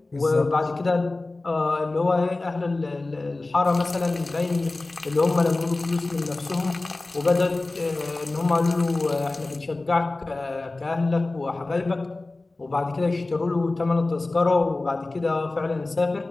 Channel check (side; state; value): right; quieter; 3.1 dB